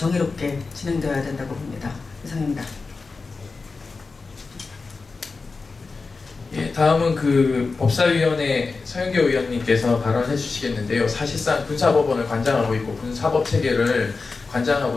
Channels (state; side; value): quieter; right; 4.2 dB